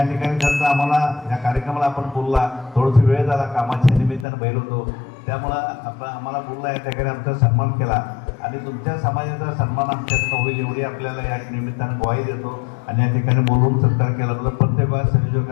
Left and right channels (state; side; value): drops out; right; at 4.2 s